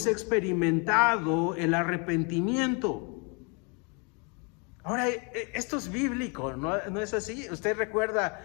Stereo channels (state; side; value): quieter; right; 33.9 dB